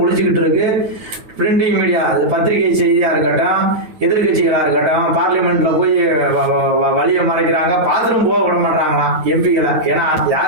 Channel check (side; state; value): left; late; 8.9 ms